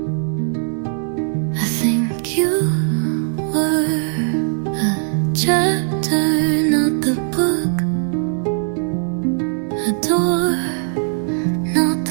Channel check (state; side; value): silent; left; 66 dB below the other